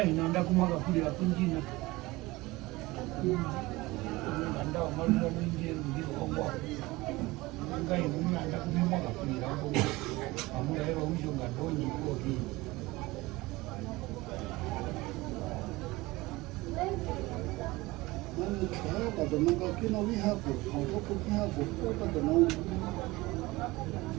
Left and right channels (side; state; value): left; quieter; 20.9 dB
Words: nanda kumaga kulira kunjina nanda marunga mwingi ngiro ongo ngai nanda kumaga kulira ongo amu Herero ujo ngandonyi ko ki